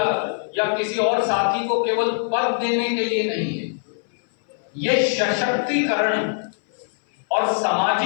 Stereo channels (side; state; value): right; silent; 62 dB below the other